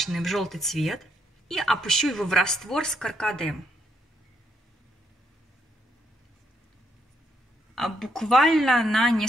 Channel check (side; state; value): both; normal; correlation 0.75